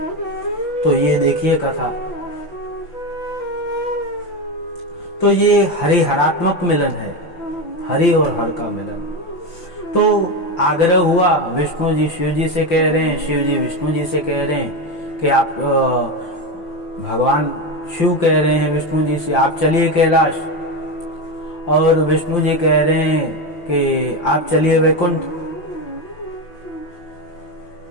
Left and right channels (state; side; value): late; right; 5.8 ms